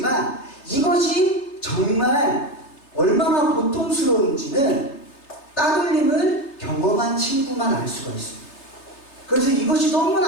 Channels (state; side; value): late; right; 3.3 ms